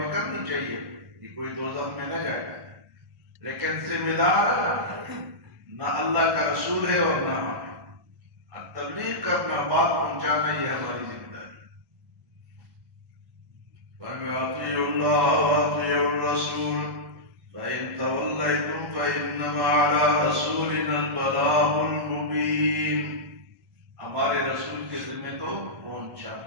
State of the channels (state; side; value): late; left; 1.1 ms